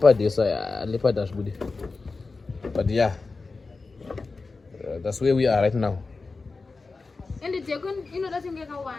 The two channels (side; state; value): right; quieter; 4.0 dB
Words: esa leopard ashbude. But yeah. That's where we are right now. And it's going to get a